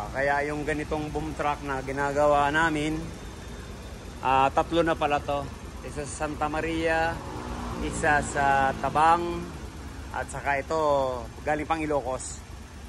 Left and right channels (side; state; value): both; identical; correlation 1.00